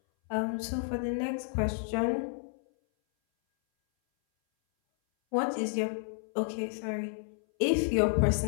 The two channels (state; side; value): silent; right; 57 dB below the other